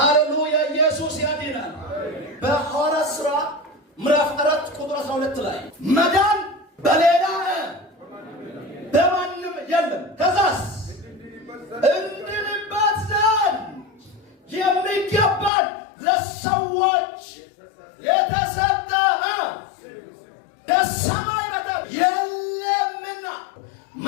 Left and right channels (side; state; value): right; drops out; at 15.5 s